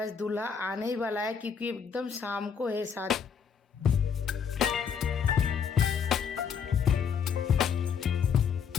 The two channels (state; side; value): quieter; right; 6.9 dB